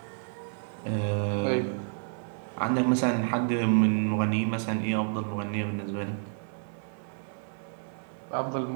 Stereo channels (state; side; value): silent; left; digital silence